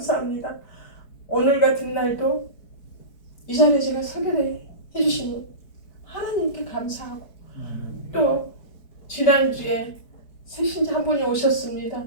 오늘 같은 날도 이 자리에 제가 서게 해주신 하나님께 감사하고 또 지난주에 새신자 한 분이 오셨습니다.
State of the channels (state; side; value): late; right; 4.7 ms